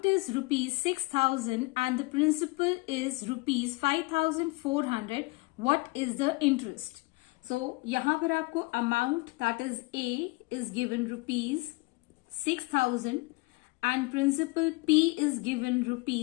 is rupees 6,000 and the principal is rupees 5,400, what is the interest? So यहाँ पर आपको amount that is A is given rupees 6,000 and principal P is given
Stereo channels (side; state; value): right; quieter; 24.9 dB